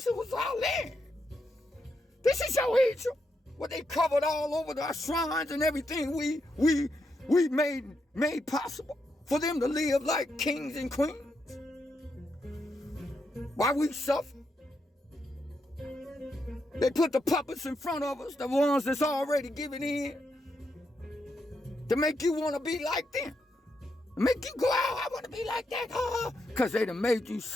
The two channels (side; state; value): both; normal; correlation 0.82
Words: land. This is your Egypt. What they covered all over our shrines and everything we made possible for them to live like kings and queens. Why we suffer? They put the puppets in front of us, the ones that's already given in, to make you want to be like them. Make you go out, I want to be like that, because they done made you